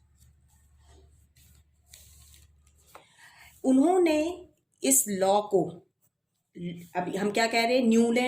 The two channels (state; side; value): identical; both; correlation 1.00